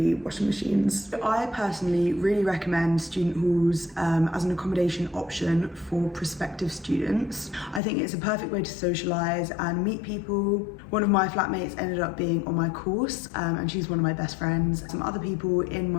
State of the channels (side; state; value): right; drops out; at 7.8 s